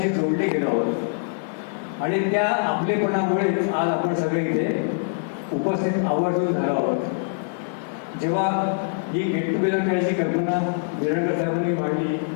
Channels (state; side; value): silent; right; digital silence